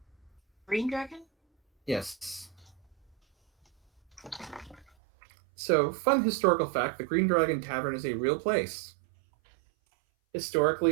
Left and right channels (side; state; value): left; drops out; at 4.9 s